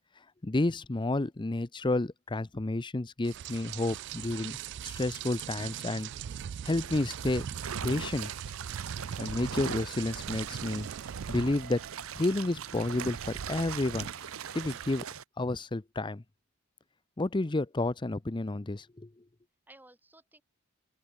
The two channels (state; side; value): normal; both; correlation 0.72